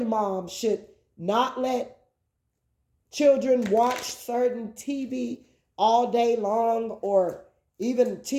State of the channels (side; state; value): both; identical; correlation 1.00